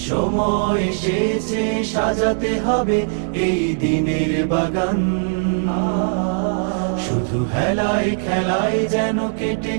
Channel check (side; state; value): left; silent; digital silence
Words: সময় এসেছে সাজাতে হবে এই দিনের বাগান। শুধু হেলায় খেলায় যেন কেটে